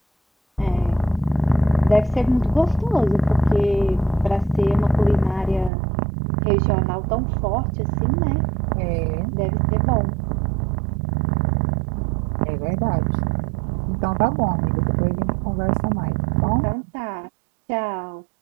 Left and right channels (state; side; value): drops out; left; at 5.7 s